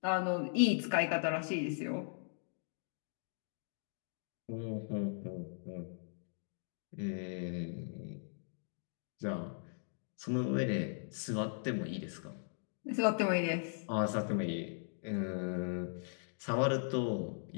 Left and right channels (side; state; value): right; silent; digital silence